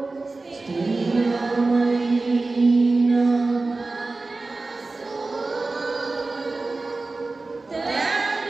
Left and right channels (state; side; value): quieter; left; 3.5 dB